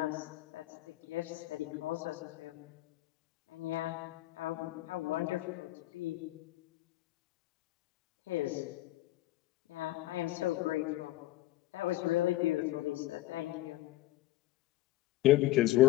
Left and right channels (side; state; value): right; quieter; 16.4 dB